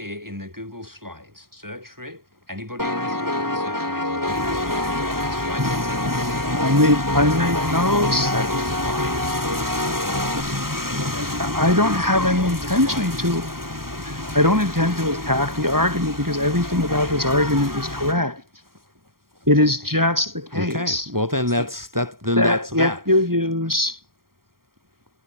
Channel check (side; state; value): left; late; 0.93 ms